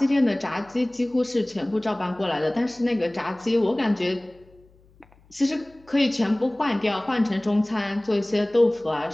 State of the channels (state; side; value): noise; left; hum, 30 dB below the sound